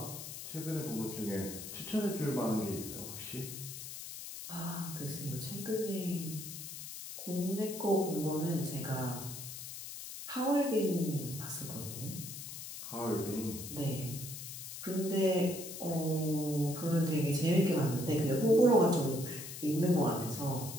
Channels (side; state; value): left; noise; hiss, 9 dB below the sound